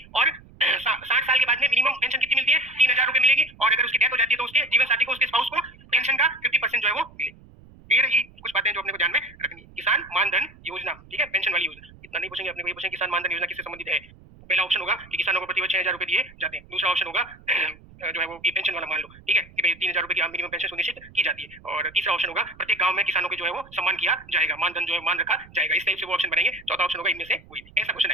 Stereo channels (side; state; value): right; noise; rumble, 23 dB below the sound